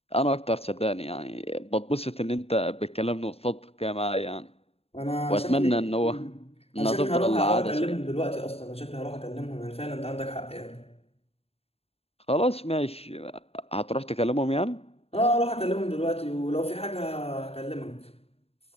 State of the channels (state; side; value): late; right; 0.29 ms